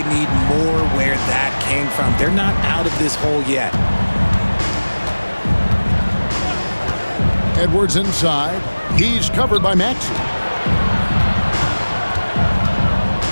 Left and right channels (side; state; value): both; inverted; correlation -1.00